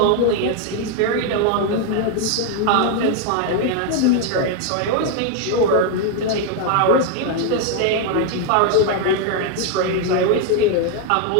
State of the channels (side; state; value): both; different; correlation 0.00